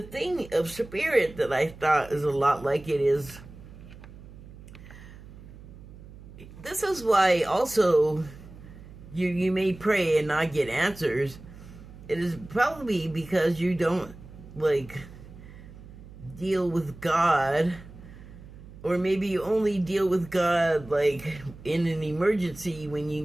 thing of spirit that I thought is a lot like it is, this is why also you may pray and not get answers. It is probably because you don't like deal with God, or maybe you only deal with God like in an emergency when you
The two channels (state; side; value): noise; right; hum, 17 dB below the sound